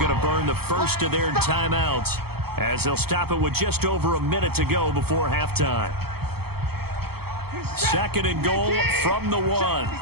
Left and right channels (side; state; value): left; late; 0.96 ms